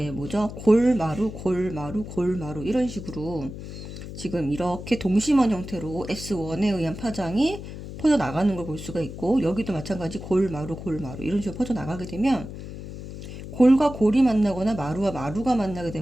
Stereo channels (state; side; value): noise; left; hum, 10 dB below the sound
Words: 뭐죠? 골마루, 골마루, 골마루 이런 식으로 지금 이렇게 동심원 형태로 S1에 의한 파장이 퍼져나가는 걸 볼 수가 있고 여기도 마찬가지 골마루 골마루 이런 식으로 퍼져나가게 되면 골과 골이 만나거나 마루와 마루가 만나게